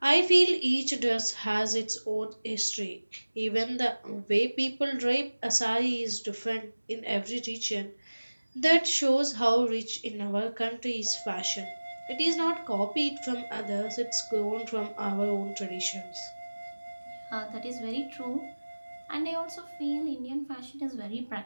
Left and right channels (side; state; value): both; inverted; correlation -1.00